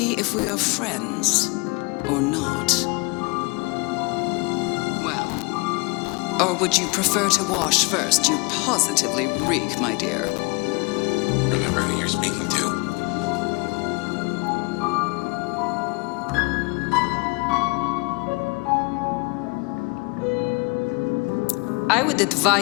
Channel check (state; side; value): quieter; right; 28.2 dB